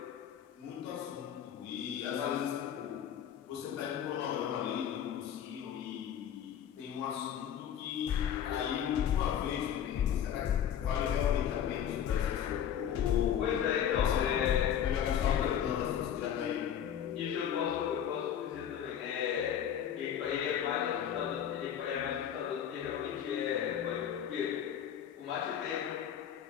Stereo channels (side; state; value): right; quieter; 9.3 dB